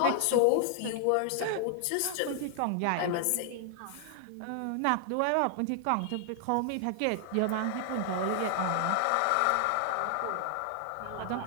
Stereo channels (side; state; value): both; different; correlation 0.00